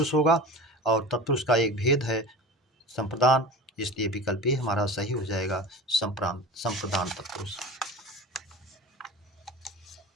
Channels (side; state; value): both; normal; correlation 0.34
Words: होगा और तत्पुरुष का एक भेद है संप्रदान, इसलिए विकल्प भी हमारा सही हो जाएगा, संप्रदान तत्पुरुष।